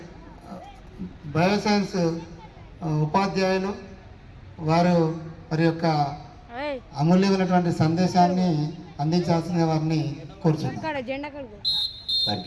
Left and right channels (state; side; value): identical; both; correlation 1.00